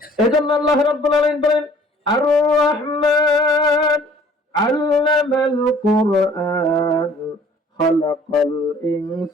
এজন্য আল্লাহ রাব্বুল আলামিন বলেন, আর রহমান আল্লামাল কুরআন খালাকাল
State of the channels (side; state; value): both; normal; correlation 0.54